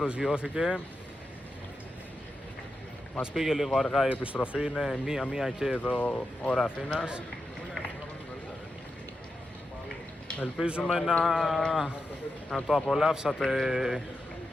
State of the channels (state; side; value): normal; both; correlation 0.88